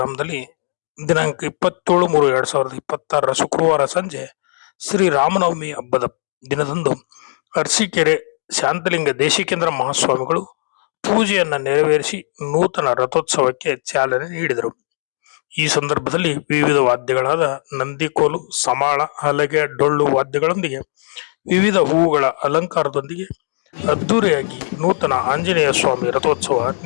ದಿನಾಂಕ 27/3/2026 ಶುಕ್ರವಾರ ಸಂಜೆ ಶ್ರೀ ರಾಮನವಮಿ ಹಬ್ಬದ ದಿನದಂದು ಅರಸೀಕೆರೆ ಶಾಂತಲಿಂಗ ದೇಶಿಕೇಂದ್ರ ಮಹಾಸ್ವಾಮಿಗಳು ಪೂಜೆಯನ್ನ ನೆರವೇರಿಸಿ ನೂತನ ರಥೋತ್ಸವಕ್ಕೆ ಚಾಲನೆ ನೀಡಿದರು. ಈ ಸಂದರ್ಭದಲ್ಲಿ ವಿವಿಧ ವಾದ್ಯಗಳಾದ ನಂದಿಕೋಲು, ಸಮಾಳ, ಹಲಗೆ, ಡೊಳ್ಳು ವಾದ್ಯಗಳೊಂದಿಗೆ ವಿವಿಧ ಹೂವುಗಳ ಅಲಂಕಾರದೊಂದಿಗೆ ಅದ್ದೂರಿಯಾಗಿ ನೂತನ ಆಂಜನೇಯ ಸ್ವಾಮಿ ರಥೋತ್ಸವ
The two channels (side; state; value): right; silent; digital silence